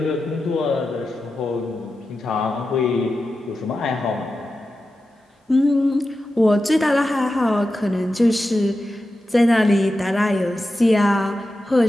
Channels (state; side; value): normal; both; correlation 0.91